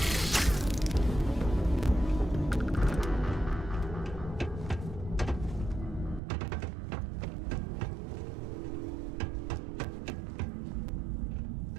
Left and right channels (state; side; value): drops out; left; at 6.2 s